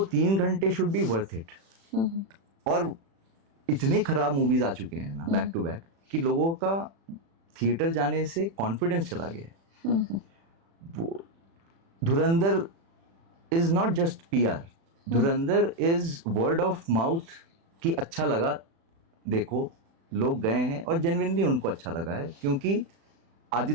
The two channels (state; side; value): late; left; 36 ms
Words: 3 घंटे शुड बी वर्थ इट। और इतने खराब मूवीज आ चुके हैं ना बैक टू बैक कि लोगों का थिएटर जाने से कॉन्फिडेंस चला गया है। वो धुरंधर is not just PR, Dhurandhar is word of mouth कि अच्छा लगा, देखो लोग गए हैं और जेन्युइनली उनको अच्छा लगा है, क्योंकि